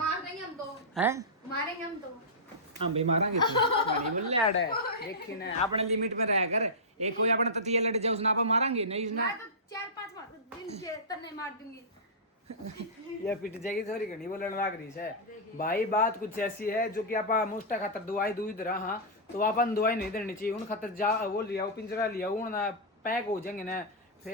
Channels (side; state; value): both; normal; correlation -0.14